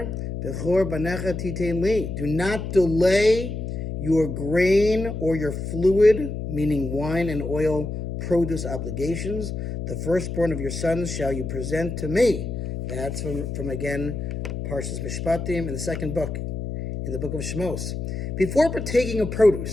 bechor banecha titein li. Do not delay your grain or your fluid, meaning wine and oil, produce obligations. The firstborn of your sons shall you present to me. That's from again, Parshas Mishpatim in the second book, in the book of Shmos. Before partaking of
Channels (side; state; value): left; noise; hum, 5 dB below the sound